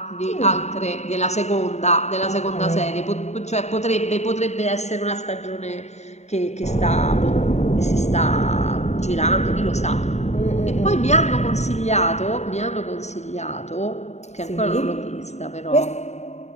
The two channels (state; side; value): late; right; 0.32 ms